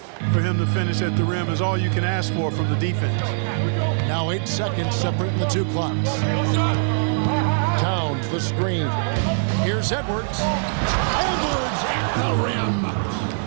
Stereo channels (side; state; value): left; silent; digital silence